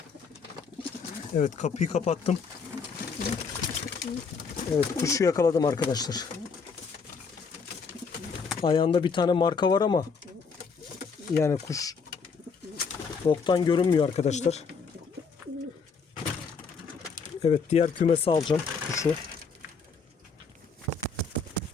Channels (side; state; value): right; quieter; 5.3 dB